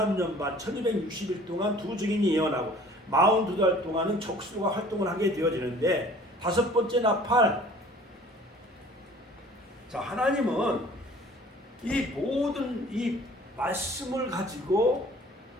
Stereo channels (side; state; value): both; normal; correlation 0.50